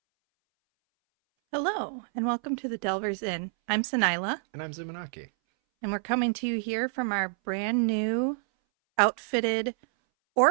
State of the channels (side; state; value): left; silent; 59 dB below the other